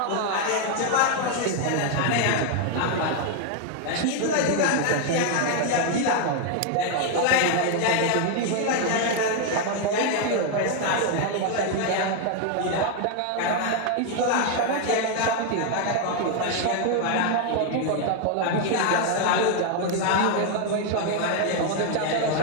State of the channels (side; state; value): both; different; correlation 0.00